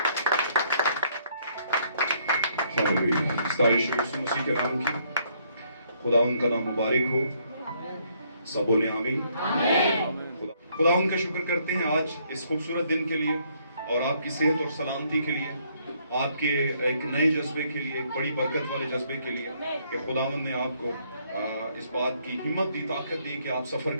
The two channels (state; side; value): inverted; both; correlation -0.69